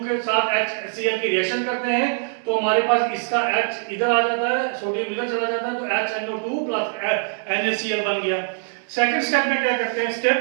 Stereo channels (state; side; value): silent; left; digital silence